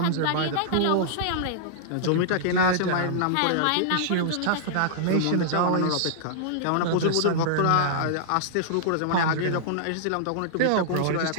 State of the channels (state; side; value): different; both; correlation -0.01